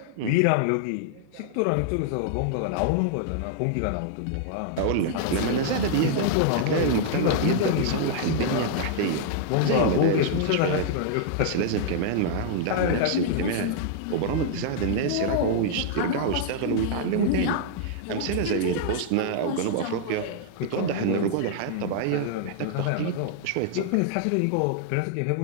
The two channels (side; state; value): both; different; correlation -0.01